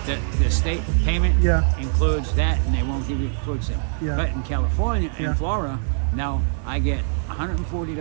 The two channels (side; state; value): left; silent; digital silence